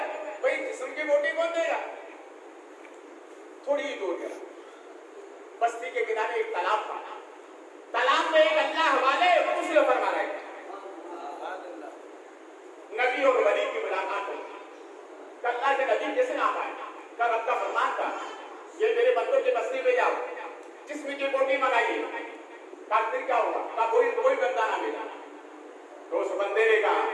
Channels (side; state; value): both; identical; correlation 1.00